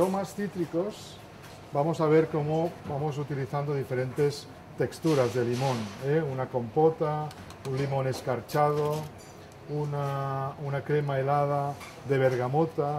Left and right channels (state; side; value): identical; both; correlation 1.00